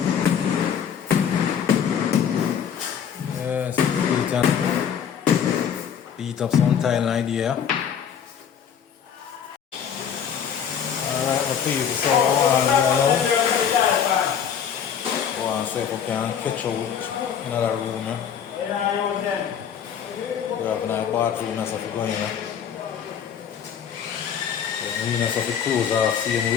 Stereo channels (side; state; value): right; quieter; 8.1 dB